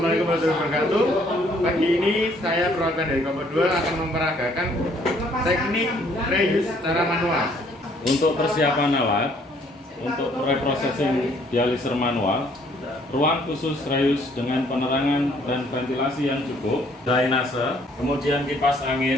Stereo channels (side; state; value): both; normal; correlation 0.63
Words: Assalamualaikum warahmatullahi wabarakatuh. Pagi ini saya perwakilan dari Kompo 2 akan memperagakan teknik reuse secara manual. Untuk persiapan alat, untuk reprocessing dialiser manual, ruang khusus reuse dengan penerangan dan ventilasi yang cukup, drainase, kemudian kipas